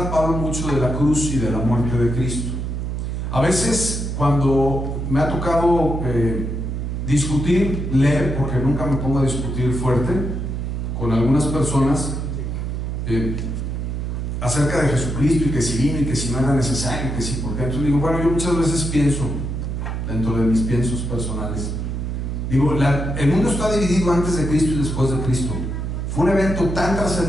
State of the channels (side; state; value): right; noise; hum, 3 dB below the sound